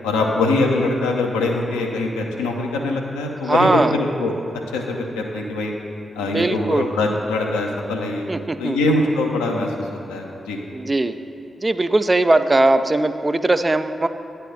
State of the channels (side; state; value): both; normal; correlation 0.81